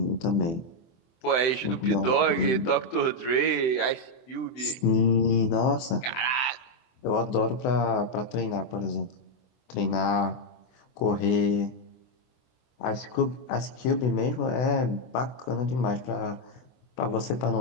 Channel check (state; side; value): late; right; 24 ms